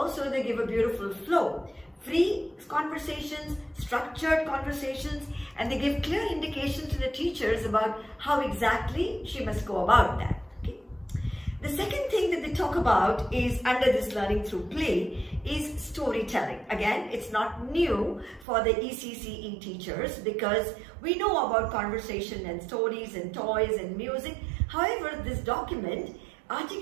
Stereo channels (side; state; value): left; drops out; at 18.4 s